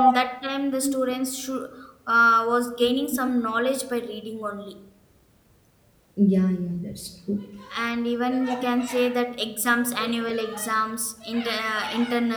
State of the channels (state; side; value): identical; both; correlation 1.00